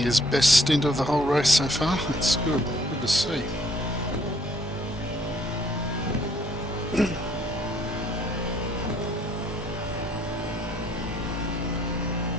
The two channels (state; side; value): normal; both; correlation 0.64